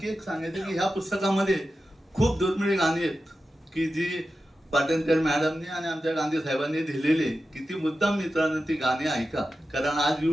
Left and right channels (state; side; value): normal; both; correlation 0.92